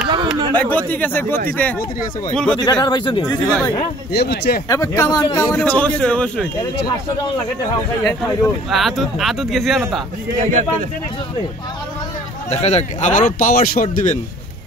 গতি গেছে, গতিতে অবশ্যই আদত গেছি না তা। দেখা যাক, আবারও পাওয়ার শট দিবেন,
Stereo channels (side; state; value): both; normal; correlation 0.52